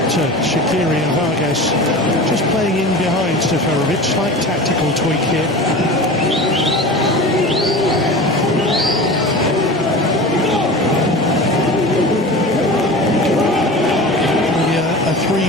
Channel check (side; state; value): both; normal; correlation 0.33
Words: Shaqiri and Vargas just playing in behind Seferovic. Slight tactical tweak here. A